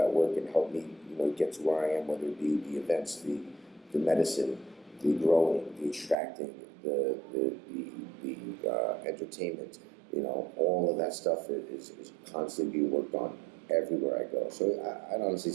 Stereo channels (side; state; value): left; drops out; at 6.2 s